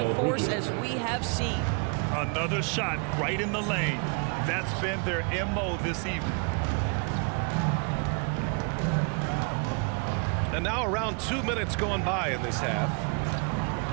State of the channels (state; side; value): quieter; left; 35.6 dB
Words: force as we have seen. Another shot right in the lane. That's been their MO this evening. And now around 2 minutes going by in this half.